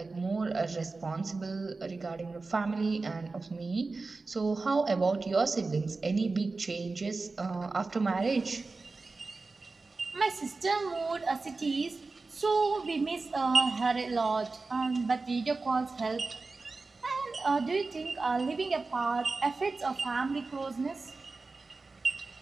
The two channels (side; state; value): left; quieter; 3.8 dB